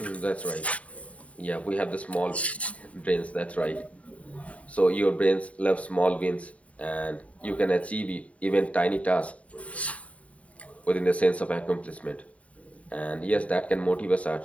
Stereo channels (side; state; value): right; late; 0.066 ms